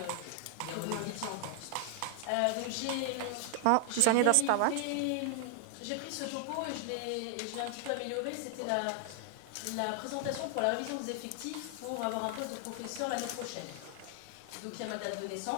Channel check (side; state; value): both; different; correlation 0.00